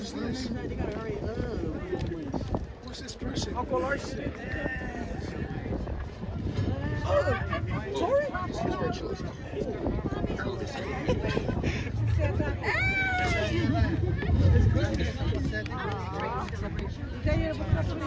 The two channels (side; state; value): both; identical; correlation 1.00